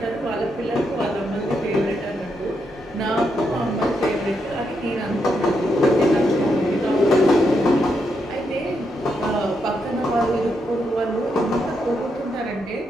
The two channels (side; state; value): both; normal; correlation 0.81